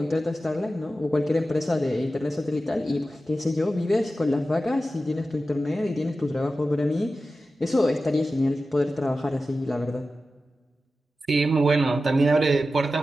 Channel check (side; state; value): both; normal; correlation 0.93